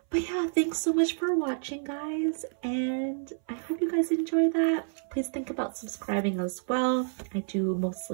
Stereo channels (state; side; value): silent; left; 58 dB below the other